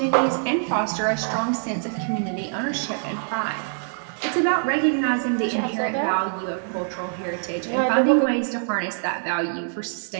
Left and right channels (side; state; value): left; silent; digital silence